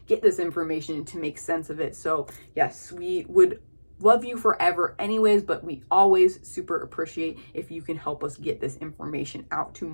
get this information and to make sense of it. So yes, we would love you forever anyways, but we always super appreciate if you can help us get this information out to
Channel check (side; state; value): both; inverted; correlation -1.00